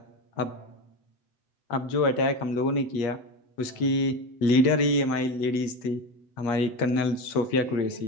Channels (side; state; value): right; late; 8.5 ms